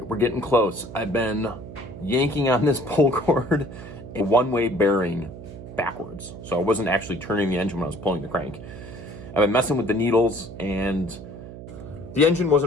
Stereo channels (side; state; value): right; noise; hum, 13 dB below the sound